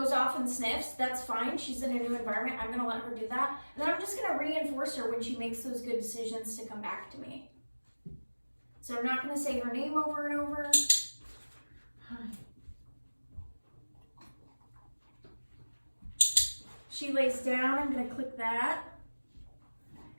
off and sniffs, that's fine. She's in a new environment. I'm going to let her do that. And then I'm just going to reinforce her when she makes those good decisions to come back to me. So I'm not going to say her name over and over. She lays down, I'm going to click that.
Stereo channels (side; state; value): both; inverted; correlation -1.00